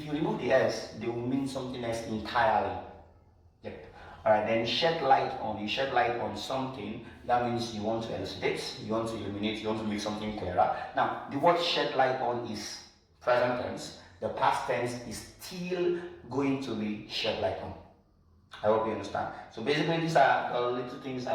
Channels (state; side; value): identical; both; correlation 1.00